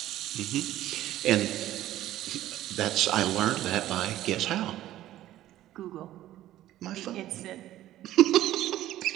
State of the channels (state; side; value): quieter; left; 13.9 dB